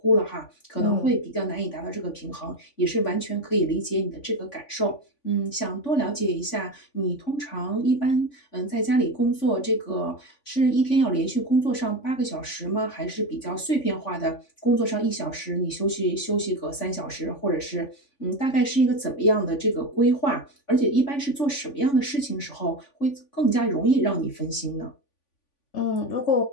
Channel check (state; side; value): late; right; 3.5 ms